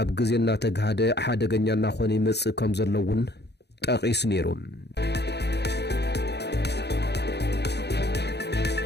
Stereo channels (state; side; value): late; right; 0.49 ms